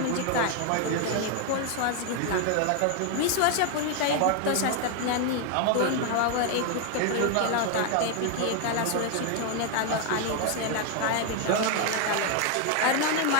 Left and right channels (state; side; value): different; both; correlation 0.01